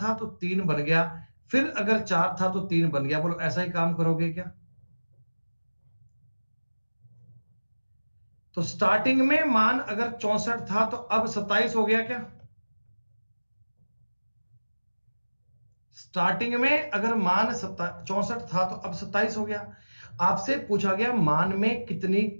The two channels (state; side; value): inverted; both; correlation -1.00